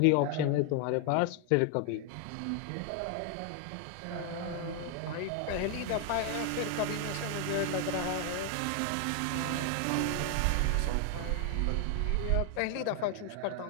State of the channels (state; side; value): different; both; correlation 0.00